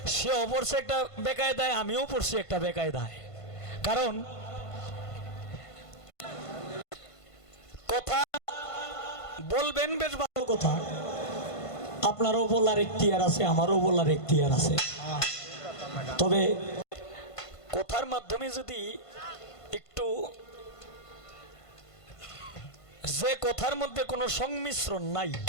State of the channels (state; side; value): late; right; 1.5 ms